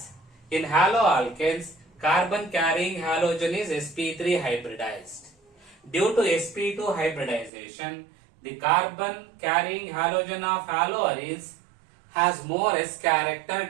in haloalkanes, carbon carrying halogen is sp3 hybridized. Due to sp2 hybridization, the carbon carrying halogen of haloarenes has more S character,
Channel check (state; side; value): drops out; left; at 7.5 s